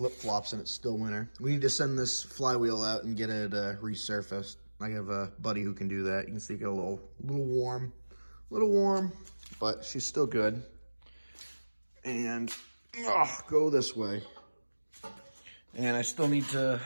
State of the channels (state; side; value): inverted; both; correlation -1.00